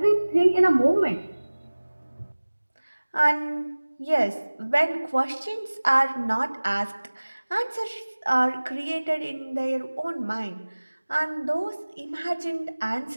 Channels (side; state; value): both; inverted; correlation -1.00